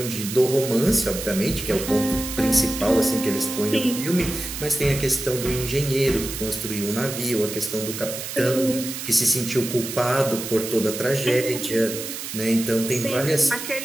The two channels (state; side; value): noise; right; hiss, 7 dB below the sound